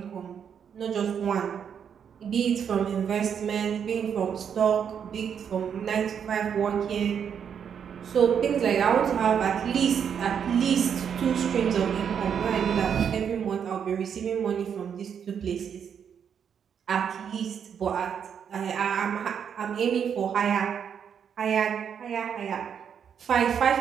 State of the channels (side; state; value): left; quieter; 7.8 dB